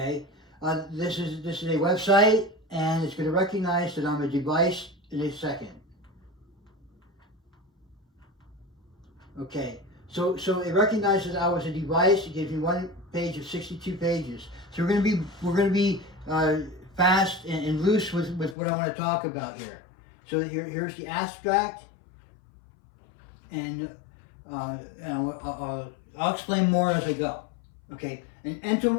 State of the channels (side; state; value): right; drops out; at 18.6 s